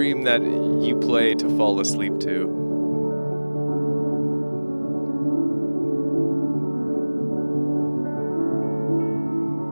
that you play to fall asleep to.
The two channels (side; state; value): both; inverted; correlation -1.00